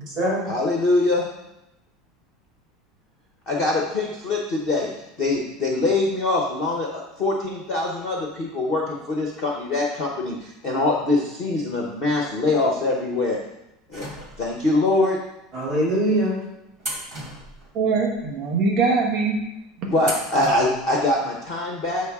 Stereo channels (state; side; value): normal; both; correlation 0.39